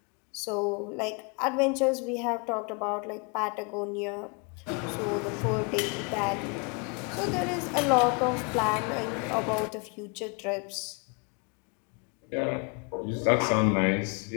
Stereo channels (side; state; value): right; quieter; 33.5 dB